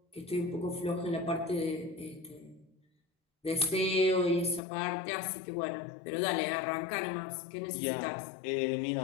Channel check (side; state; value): right; drops out; at 4.6 s